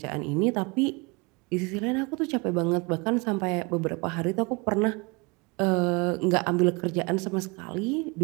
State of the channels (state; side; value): quieter; left; 28.2 dB